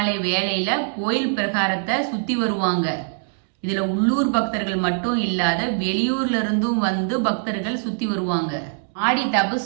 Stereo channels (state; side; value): silent; left; digital silence